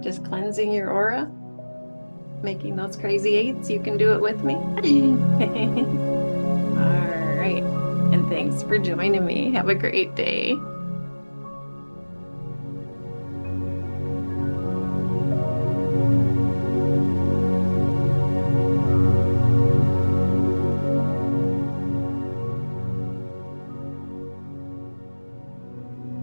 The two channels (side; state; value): both; inverted; correlation -1.00